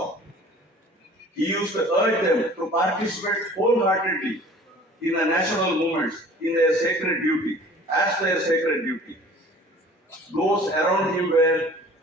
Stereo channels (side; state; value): both; normal; correlation 0.48